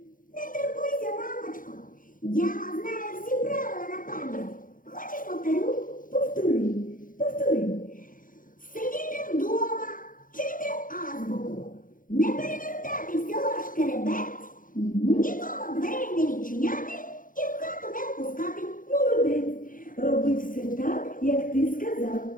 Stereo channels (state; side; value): late; right; 0.39 ms